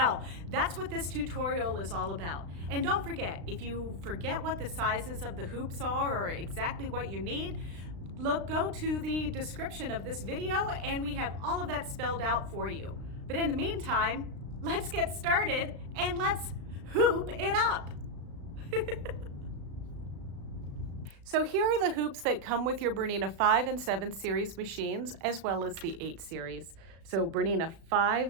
that's what this tutorial is all about. And don't forget, if you forget what the sizes of the hoops are or exactly what you need, go to the description of this video and we have all of that spelled out for you. But in the meantime, let's get started and let's hoop it up. So here are the hoops that come with your BERNINA 5 and 7 series machines, as well as the 8 series. So BERNINA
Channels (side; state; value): left; late; 35 ms